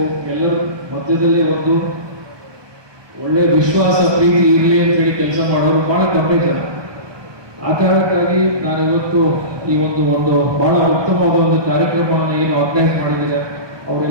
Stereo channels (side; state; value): left; late; 1.2 ms